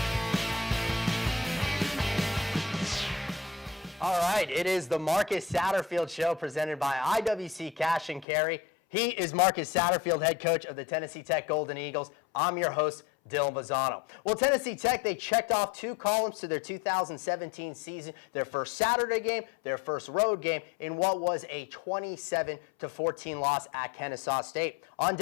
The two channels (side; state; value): right; drops out; at 8.2 s